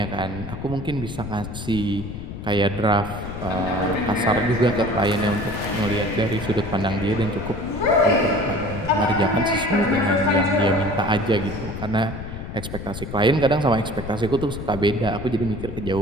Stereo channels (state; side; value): noise; left; rumble, 9 dB below the sound